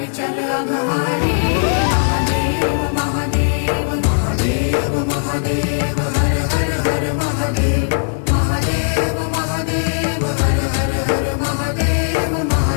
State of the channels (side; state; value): right; silent; 65 dB below the other